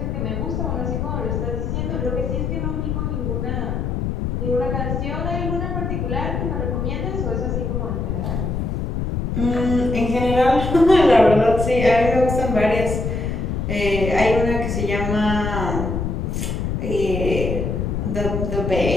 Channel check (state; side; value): noise; left; rumble, 1 dB below the sound